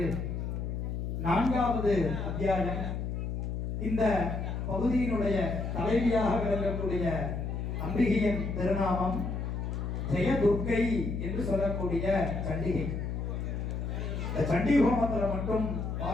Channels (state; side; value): noise; left; hum, 3 dB below the sound